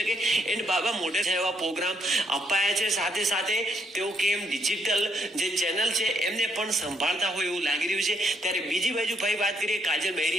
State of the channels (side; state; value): both; normal; correlation 0.74